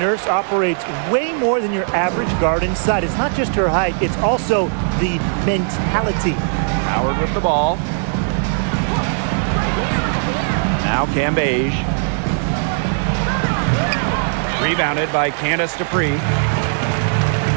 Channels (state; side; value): silent; left; 67 dB below the other